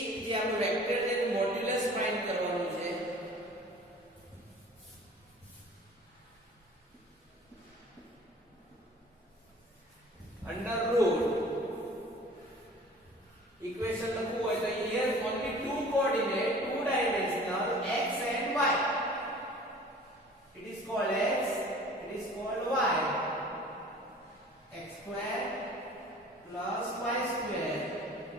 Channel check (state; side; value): normal; both; correlation 0.46